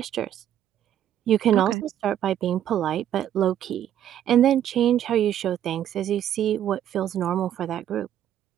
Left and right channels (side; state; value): left; quieter; 10.8 dB